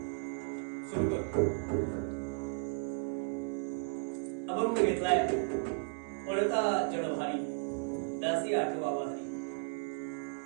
सुरू करतो. अभंग घेतलाय पळता जडभारी दासी आठवा वारी.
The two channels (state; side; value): silent; left; digital silence